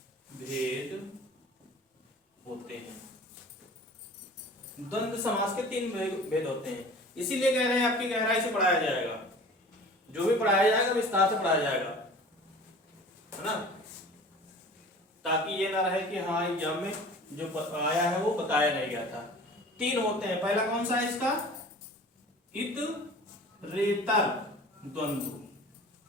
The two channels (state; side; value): normal; both; correlation 0.43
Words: भेद होते हैं। द्वंद्व समास के 3 भेद होते हैं, इसीलिए कह रहे हैं आपकी गहराई से पढ़ाया जाएगा। जो भी पढ़ाया जाएगा विस्तार से पढ़ाया जाएगा, है ना, ताकि ये ना रहे कि हाँ एग्जाम में जो आया है वो बताया नहीं गया था। 3 होते हैं। पहला कौन सा है इसका? इतरेतर द्वंद्व,